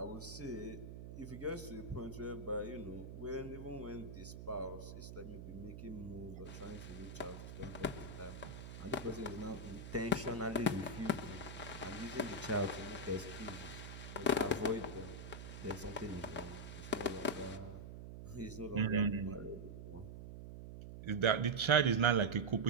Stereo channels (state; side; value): noise; right; hum, 10 dB below the sound